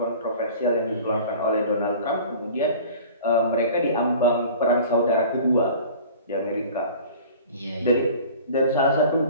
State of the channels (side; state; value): both; inverted; correlation -0.43